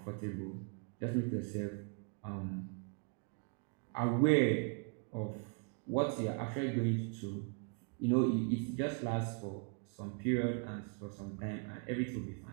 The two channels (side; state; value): left; quieter; 39.6 dB